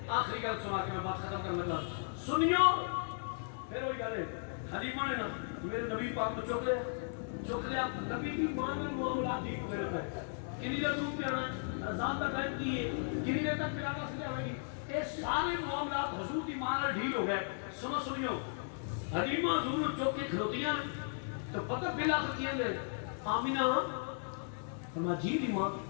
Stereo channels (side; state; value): right; silent; digital silence